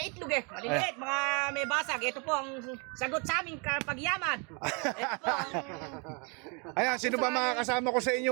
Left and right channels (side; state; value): left; quieter; 33.7 dB